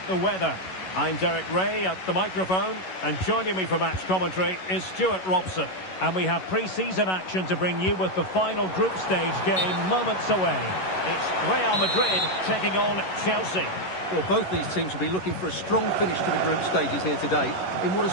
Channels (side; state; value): right; late; 11 ms